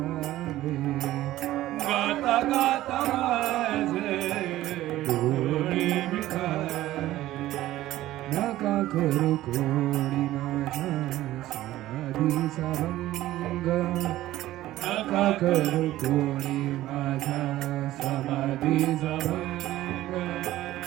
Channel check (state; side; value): quieter; left; 15.2 dB